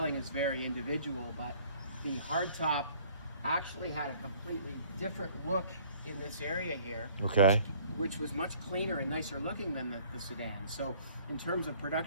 is very individual, but the hardtop actually had a completely different look in this area here. Okay. Which was much cleaner and nicer looking than the sedan. So in terms of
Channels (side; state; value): both; inverted; correlation -0.55